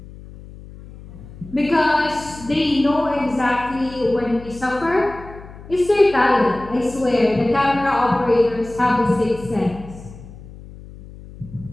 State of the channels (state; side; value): noise; left; hum, 17 dB below the sound